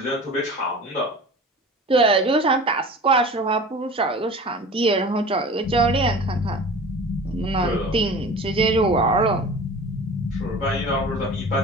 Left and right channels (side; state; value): both; normal; correlation 0.39